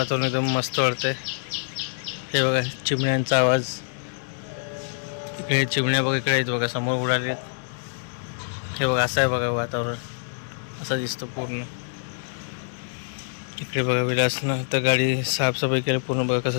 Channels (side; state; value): right; silent; digital silence